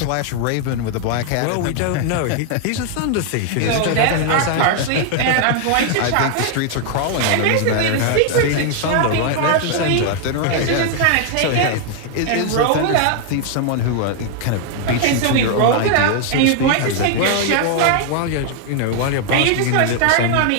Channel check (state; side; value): different; both; correlation 0.00